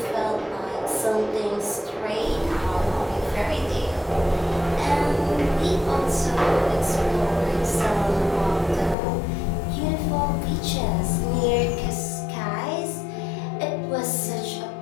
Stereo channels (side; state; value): right; drops out; at 9.0 s